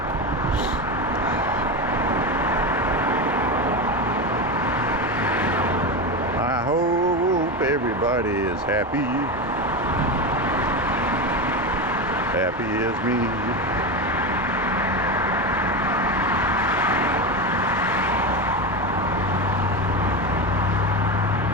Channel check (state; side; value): normal; both; correlation 0.18